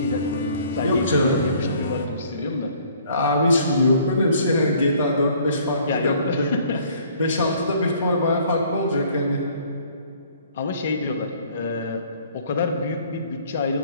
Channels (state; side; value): inverted; both; correlation -0.58